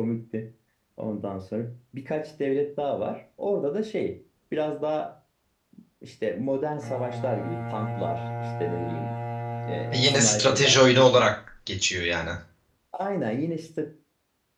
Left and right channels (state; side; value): identical; both; correlation 1.00